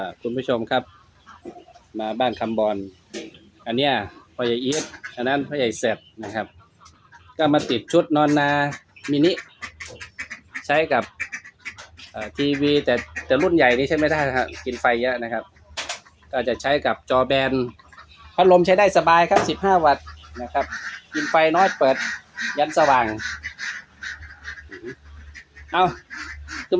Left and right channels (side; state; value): both; identical; correlation 1.00